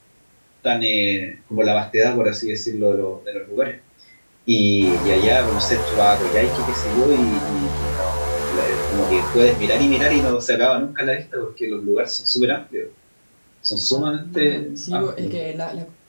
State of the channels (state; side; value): inverted; both; correlation -1.00